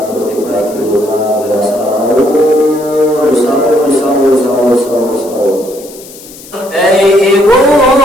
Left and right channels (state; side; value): noise; left; hiss, 19 dB below the sound